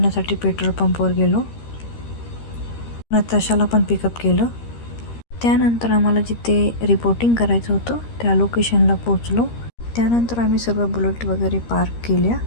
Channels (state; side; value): late; right; 13 ms